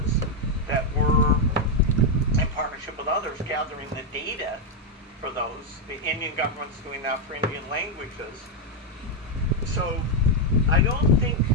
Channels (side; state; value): both; normal; correlation 0.02